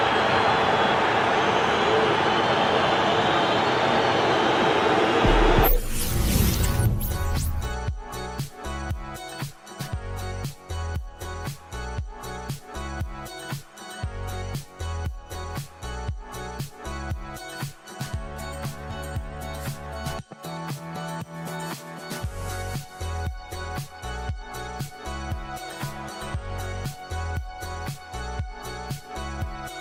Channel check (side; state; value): both; identical; correlation 1.00